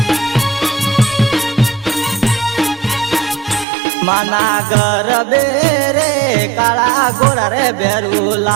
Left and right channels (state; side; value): drops out; left; at 3.7 s